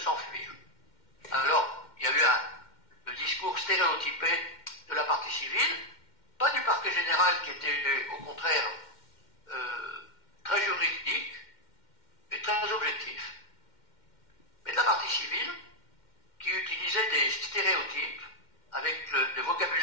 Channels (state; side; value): late; right; 2.1 ms